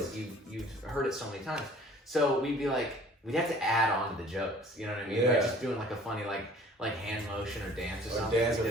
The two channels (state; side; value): normal; both; correlation 0.51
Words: you've heard it so many times. So we'd be like, we'd have to add on to the jokes, you know what I mean? Yeah. Like just doing like a funny like hand motion or dance or something. Or dance or